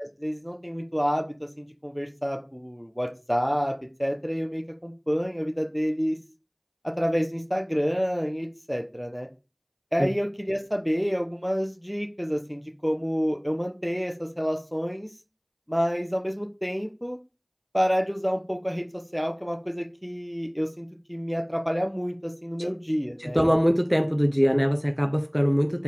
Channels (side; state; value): both; identical; correlation 1.00